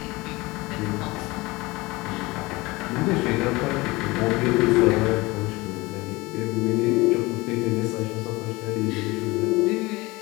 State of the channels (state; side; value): quieter; right; 22.3 dB